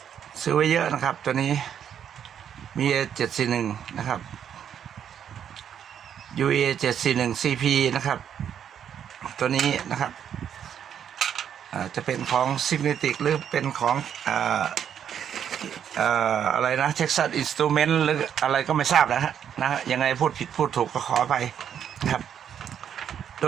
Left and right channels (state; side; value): quieter; left; 8.8 dB